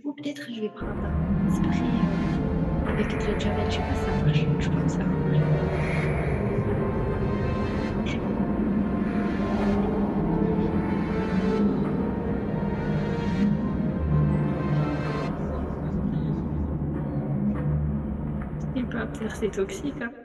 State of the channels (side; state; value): both; identical; correlation 1.00